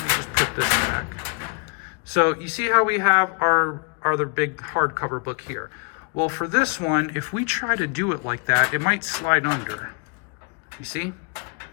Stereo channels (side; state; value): right; quieter; 36.0 dB